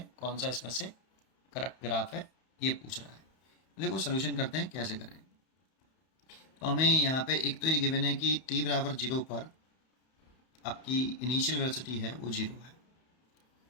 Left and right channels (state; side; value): late; right; 31 ms